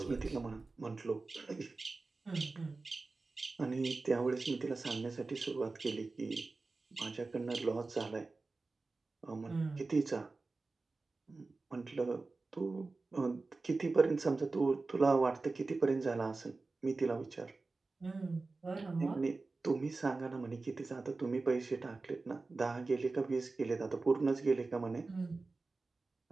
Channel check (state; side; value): quieter; left; 3.7 dB